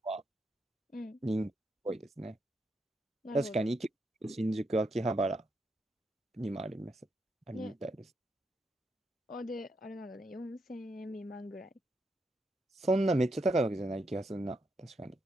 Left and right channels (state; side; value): normal; both; correlation 0.80